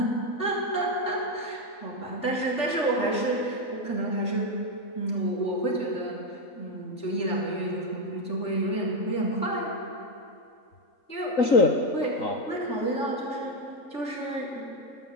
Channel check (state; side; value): late; right; 3.4 ms